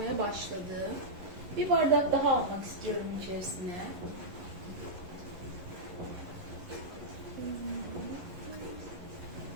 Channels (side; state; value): left; late; 11 ms